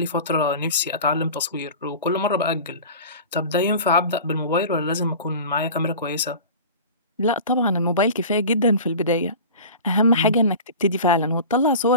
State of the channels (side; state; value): both; inverted; correlation -0.36